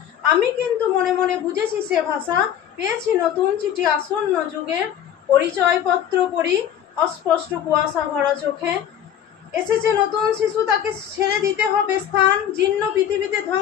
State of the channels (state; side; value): quieter; right; 9.8 dB